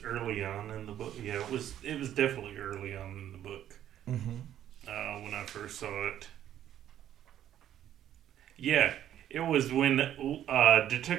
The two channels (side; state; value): left; quieter; 11.2 dB